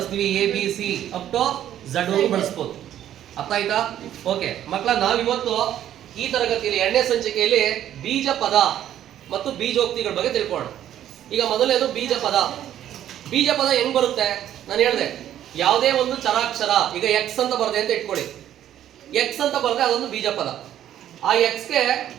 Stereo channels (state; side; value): quieter; left; 11.4 dB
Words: ABC ಅಪ್ ಟು Z ವರೆಗೂ ಬಳಸ್ಬೋದು. ಅರ್ಥ ಆಯ್ತಾ? ಓಕೆ ಮಕ್ಕಳ, ನಾವಿವತ್ತು ಈ ತರಗತಿಯಲ್ಲಿ ಎರಡನೇ ಸಂಚಿಕೆಯಲ್ಲಿ ಬೀಜ ಪದ ಮತ್ತು ಬೀಜೋಕ್ತಿಗಳ ಬಗ್ಗೆ ತಿಳ್ಕೊಳ್ಳೋಣ. ಈಗ ಮೊದಲನೇದು ಬೀಜ ಪದ. ಬೀಜ ಪದ ಹೆಂಗ್ ಬರುತ್ತೆ? ನಾನು ಹೇಳಿದೆ, ಯಾವುದೇ ಒಂದು ಚರಾಕ್ಷರ, ಈಗ ಎಕ್ಸ್ ಅಂತ ಬರದೆ ಅಂತ ಇಟ್ಕೊಳ್ಳಿ. ಎಕ್ಸ್ ಅಂತ ಬರದೆ ಅದೊಂದು ಬೀಜ ಪದ. ಆ ಎಕ್ಸ್ಗೆ